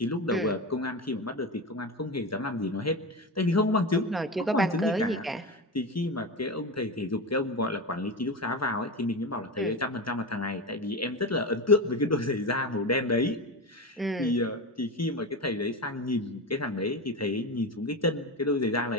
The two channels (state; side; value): normal; both; correlation 0.22